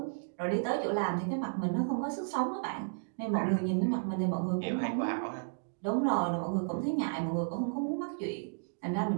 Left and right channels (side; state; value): left; silent; digital silence